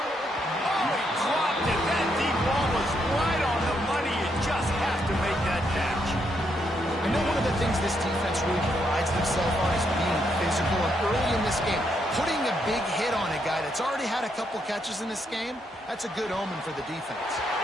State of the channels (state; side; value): normal; both; correlation 0.77